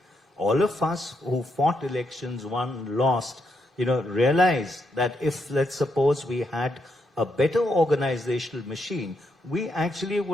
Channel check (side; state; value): both; normal; correlation 0.79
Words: All of us who fought elections, won, lost, realize that if, let's suppose, we had a better organizational machine, we actually